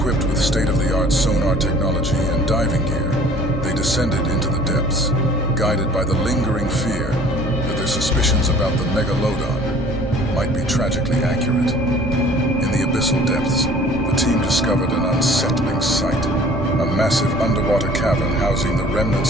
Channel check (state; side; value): normal; both; correlation 0.50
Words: with state-of-the-art sonar technology and diving gear, they descended into the depths, guided by the lingering fear that their suspicions about the Megalodon might be tragically accurate. In the abyssal depths, the team discovered an unsettling sight, a massive underwater cavern housing the